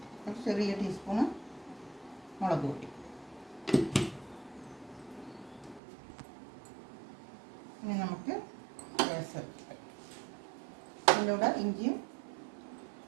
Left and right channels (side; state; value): left; drops out; at 5.8 s